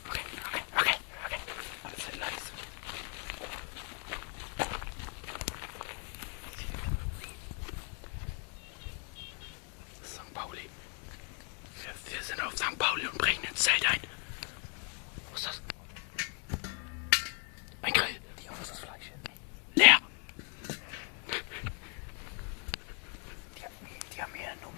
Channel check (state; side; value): quieter; right; 38.4 dB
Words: Okay. Alles leise. St. Pauli. Wir sind auf St. Pauli und brechen ins Zelt ein. Was ist das? Ein Grill. Die haben das Fleisch. Leer. Die haben hier nur